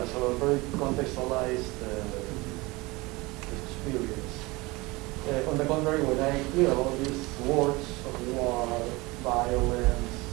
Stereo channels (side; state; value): left; quieter; 23.1 dB